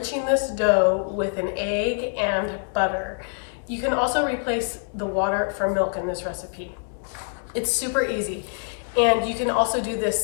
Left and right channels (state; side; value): silent; right; digital silence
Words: this dough with an egg and butter. You can also replace the water for milk in this recipe. It's super easy. And you can also do